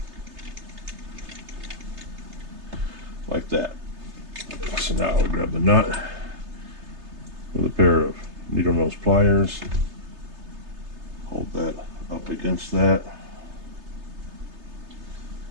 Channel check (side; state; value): left; late; 3.3 ms